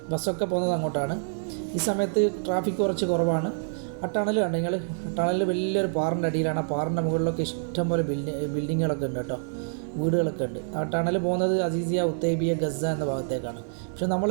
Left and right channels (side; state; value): left; silent; digital silence